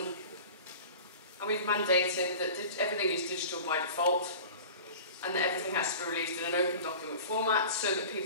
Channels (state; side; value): inverted; both; correlation -0.38